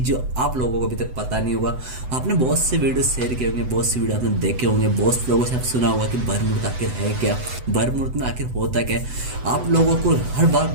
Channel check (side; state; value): left; late; 7.9 ms